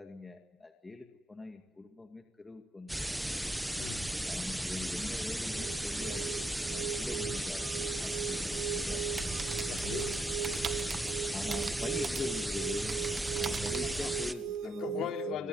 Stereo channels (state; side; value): normal; both; correlation 0.79